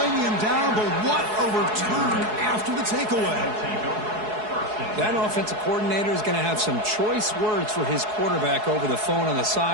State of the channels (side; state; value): left; late; 4.7 ms